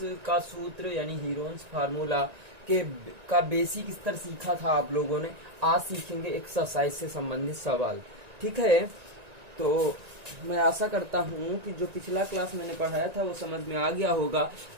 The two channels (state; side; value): late; left; 1.9 ms